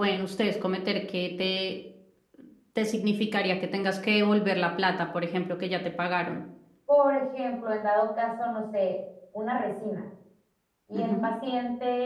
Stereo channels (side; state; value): both; identical; correlation 1.00